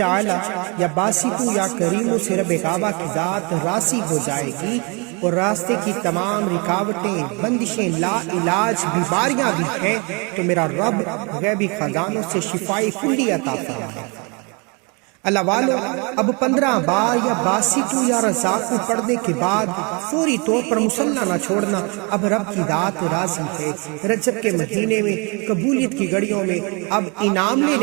یا باسطو یا کریمو سے رب کعبہ کی ذات راضی ہو جائے گی، اور راستے کی تمام رکاوٹیں، بندشیں، لا علاج بیماریاں بھی ہیں تو میرا رب غیبی خزانوں سے شفائی کلی عطا فرمائے۔ اللہ والو اب 15 بار یا باسطو یا رزاقو پڑھنے کے بعد فوری طور پر مصلی نہ چھوڑنا۔ اب رب کی ذات راضی ہے، رجب کے مہینے میں قبولیت کی گھڑیوں میں اب انعام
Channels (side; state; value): left; quieter; 31.1 dB